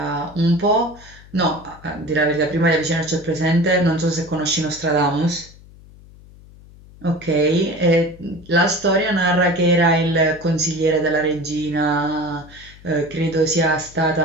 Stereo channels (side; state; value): left; noise; hum, 22 dB below the sound